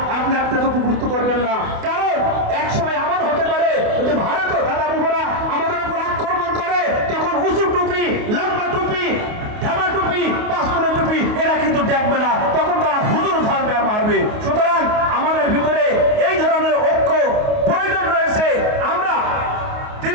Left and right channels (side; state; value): left; late; 28 ms